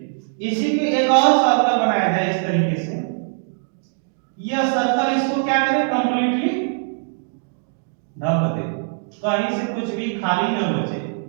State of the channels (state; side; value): silent; left; digital silence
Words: इसी पे एक और सर्कल बनाया है इस तरीके से, यह सर्कल इसको क्या करे, कंप्लीटली ढक दे, कहीं से कुछ भी खाली न बचे।